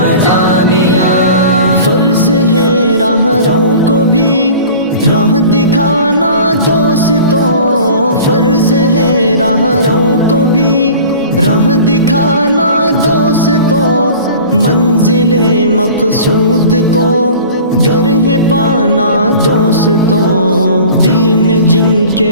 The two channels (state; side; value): inverted; both; correlation -0.42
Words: جامعہ، فرض ہے راہ رو کو بھی راہ دکھانا دوستوں، فرض ہے راہ رو کو بھی راہ دکھانا دوستوں، منزل مقصود کو گر ہے پانا دوستوں، دل میں جن